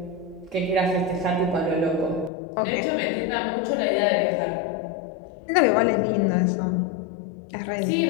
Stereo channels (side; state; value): right; drops out; at 2.3 s